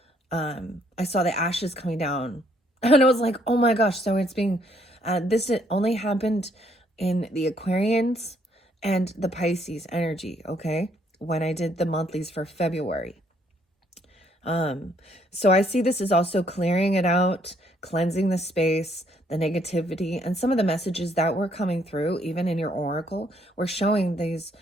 I saw the ashes coming down and I was like, oh my gosh. So it's being, this only happened in the Aquarians and the Pisces energy. Okay. When I did the monthlies for February. So I see this is also clearing it out, cleansing the space, the negativity, and some of the messages that were coming through, even in your oracle, were showing these,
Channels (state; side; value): normal; both; correlation 0.68